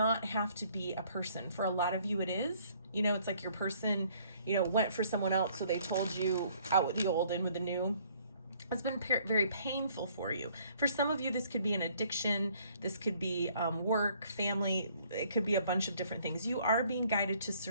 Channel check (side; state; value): both; inverted; correlation -0.61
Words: have to be a person. For a lot of you it is. You know, it's like your person, you know, went for someone else, so they told you out with the old, in with the new. It's been very painful for you. For some of you, this could be an addiction. This could be work, family. It could be a bunch of different things. You are being guided to